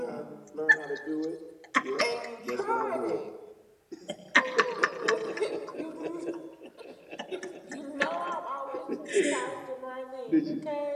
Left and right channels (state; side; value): identical; both; correlation 1.00